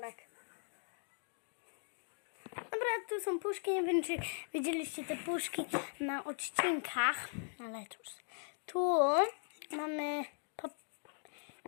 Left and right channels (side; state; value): right; silent; digital silence